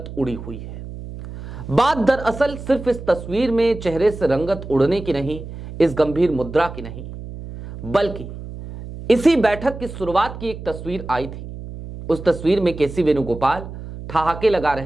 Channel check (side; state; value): right; noise; hum, 11 dB below the sound